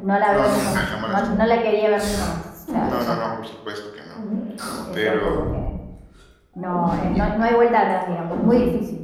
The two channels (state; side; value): identical; both; correlation 1.00